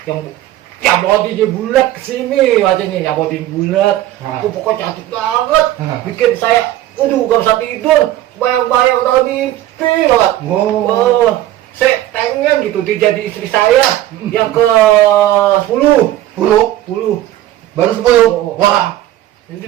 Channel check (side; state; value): left; quieter; 14.0 dB